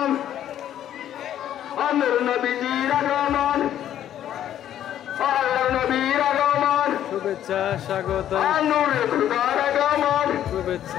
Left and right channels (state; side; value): quieter; right; 11.1 dB